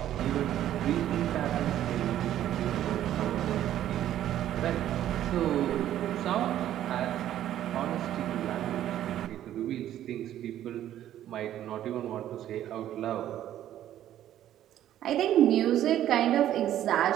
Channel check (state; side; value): quieter; left; 11.9 dB